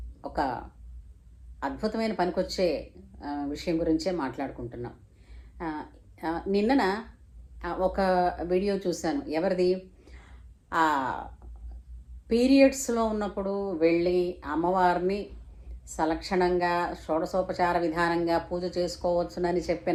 ఒక అద్భుతమైన పనికొచ్చే విషయం గురించే మాట్లాడుకుంటున్నాం. నిన్నన ఒక వీడియో చూశాను. ఎవరిది? పీరియడ్స్లో ఉన్నప్పుడు వెళ్ళి అమ్మవారిని సలక్షణంగా షోడశోపచార విధానంగా పూజ చేసుకోవచ్చునని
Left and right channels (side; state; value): both; identical; correlation 1.00